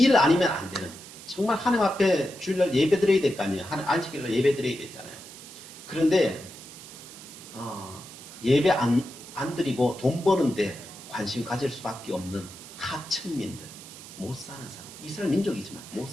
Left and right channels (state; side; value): noise; right; hiss, 16 dB below the sound